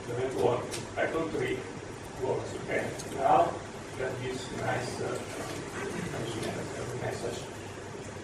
doesn't work. Python 3 works. Okay. Now that this nice message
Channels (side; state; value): both; identical; correlation 1.00